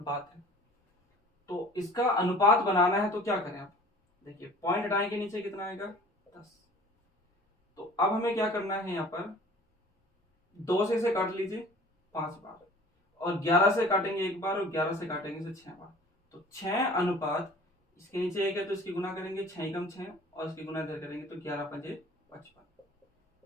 है। तो इसका अनुपात बनाना है तो क्या करें आप, देखिए पॉइंट हटाएंगे नीचे कितना आएगा 10। तो अब हमें क्या करना है, यहाँ पर 2 से इसे काट लीजिए 5 बार, और 11 से काटेंगे एक बार, और 11 से काटेंगे इसे 6 बार। तो 6 अनुपात, इसके नीचे एक है तो इसकी गुना करेंगे 6 कम 6, और इसकी गुना इधर करेंगे तो 11 पंजे 55,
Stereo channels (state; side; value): normal; both; correlation 0.47